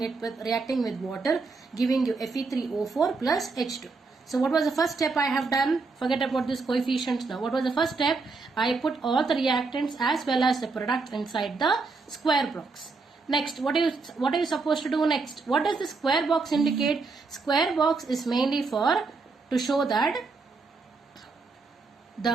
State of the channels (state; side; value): quieter; left; 4.1 dB